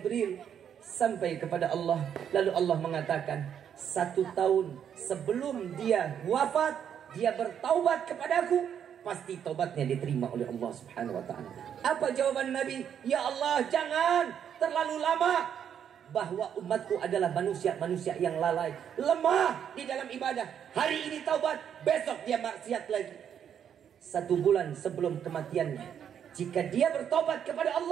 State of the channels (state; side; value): quieter; left; 8.7 dB